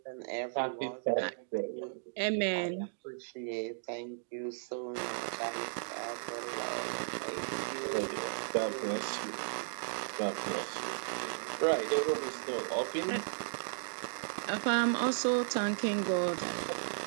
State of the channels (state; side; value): silent; left; digital silence